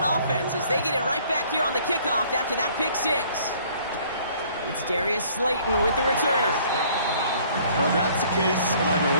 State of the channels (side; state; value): both; inverted; correlation -0.58